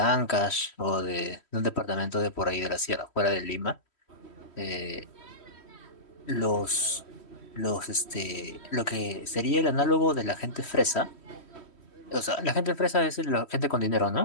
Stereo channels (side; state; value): right; late; 3.1 ms